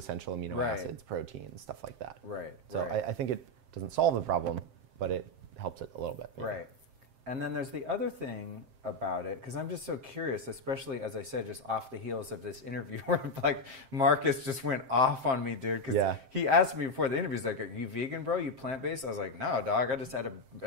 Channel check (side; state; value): left; late; 7.6 ms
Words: amino acids, proteins, stuff like that. So I think it doesn't solve the problem, but it helps it a little bit. Right. And then there's the other thing about it, because I'm just so curious, especially, as I said, just off the heels of this interview where like Marcus just went off on me, dude, because he asked me before the interview, he's like, are you vegan, bro? You plant-based? I was like, no, dog, I just had